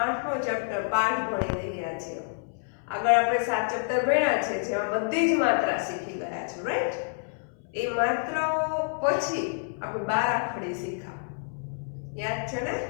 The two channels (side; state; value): right; silent; 59 dB below the other